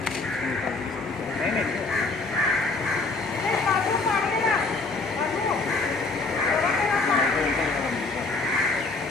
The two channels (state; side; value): quieter; right; 3.6 dB